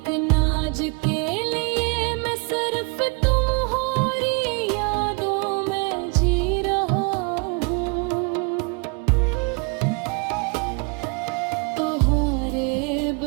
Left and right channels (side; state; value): left; quieter; 31.1 dB